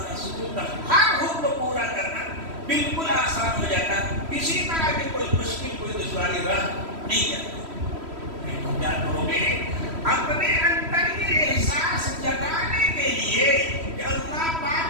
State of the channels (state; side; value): late; left; 3.1 ms